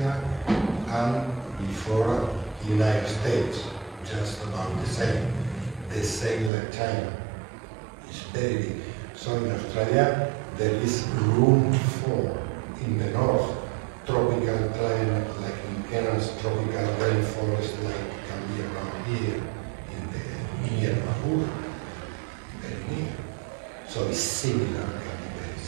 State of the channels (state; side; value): drops out; left; at 6.5 s